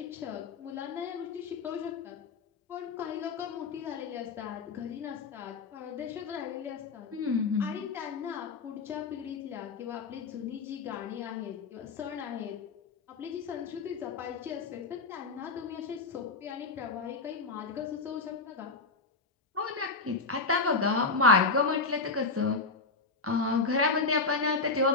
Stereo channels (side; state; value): right; quieter; 4.0 dB